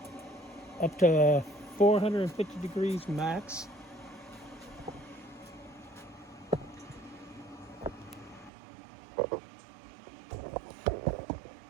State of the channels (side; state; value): left; drops out; at 8.5 s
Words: up to 450 degrees max.